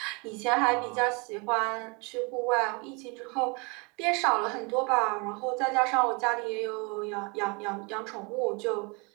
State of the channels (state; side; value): quieter; left; 31.0 dB